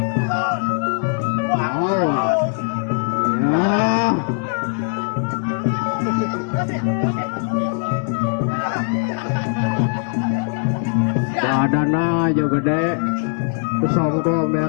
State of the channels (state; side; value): silent; right; digital silence